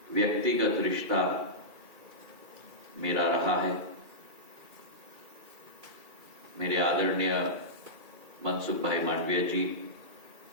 व्यक्तिगत रिश्ता मेरा रहा है, मेरे आदरणीय मनसुख भाई मांडविया जी,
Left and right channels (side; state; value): left; late; 2.3 ms